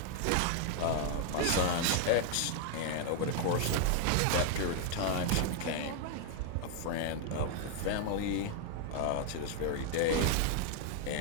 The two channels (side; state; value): both; different; correlation 0.00